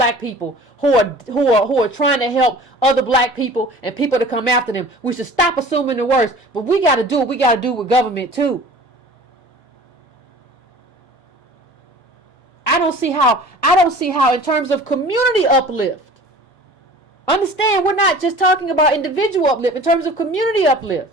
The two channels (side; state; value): both; normal; correlation 0.43